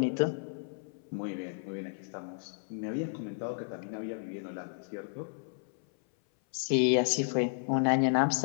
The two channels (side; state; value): right; silent; 56 dB below the other